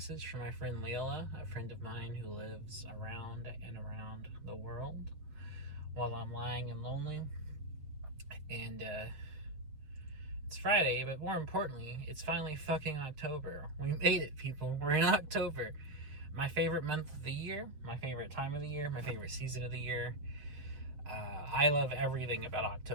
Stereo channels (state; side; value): late; left; 7.0 ms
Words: from my friend Lilla, a friend of mine who lives around and around the world while I'm lying and lonely. And it's Friday, but more importantly, it's finally fucking October. We made it, people. We're in October. My favorite month of the year, my favorite time of the year, my favorite season of the year. I love everything about